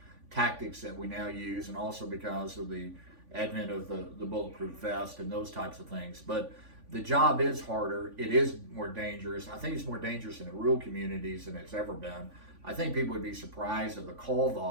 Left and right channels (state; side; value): late; left; 3.5 ms